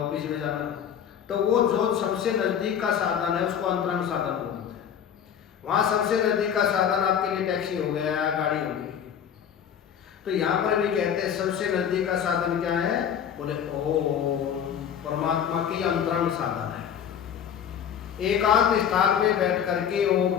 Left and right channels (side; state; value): right; quieter; 8.5 dB